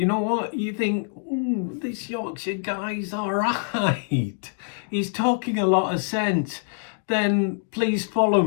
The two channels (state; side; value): silent; right; digital silence